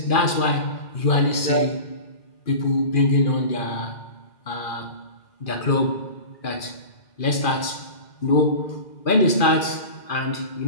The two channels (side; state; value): right; late; 2.4 ms